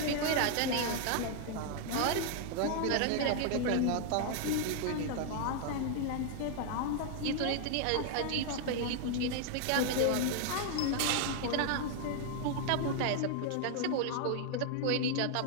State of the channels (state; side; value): different; both; correlation 0.00